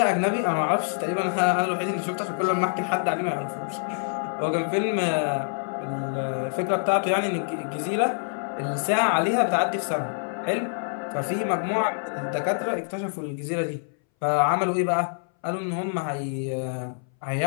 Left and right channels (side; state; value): right; silent; 61 dB below the other